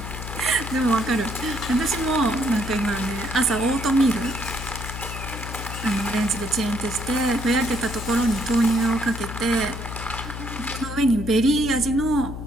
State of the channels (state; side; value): noise; left; hum, 8 dB below the sound